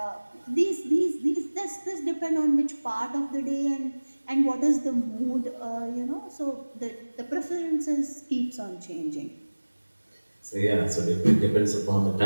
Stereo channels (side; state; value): both; inverted; correlation -1.00